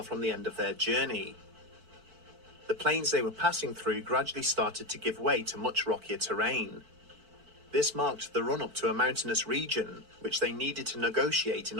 from the end of their journey. The plains they were passing through gradually started to give way to much rockier terrain. This marked the run-up to a mountainous region, which they needed to negotiate in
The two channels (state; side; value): late; left; 4.5 ms